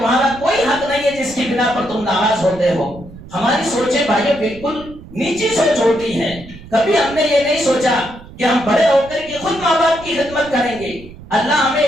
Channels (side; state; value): right; noise; rumble, 18 dB below the sound